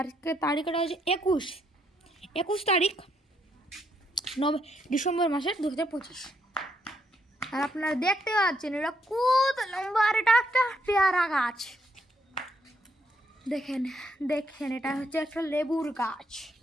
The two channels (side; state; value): both; normal; correlation 0.75